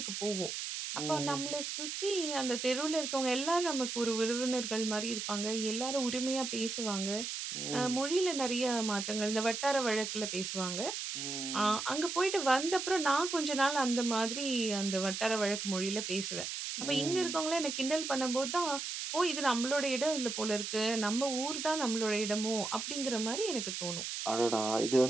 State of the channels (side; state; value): right; noise; hiss, 4 dB below the sound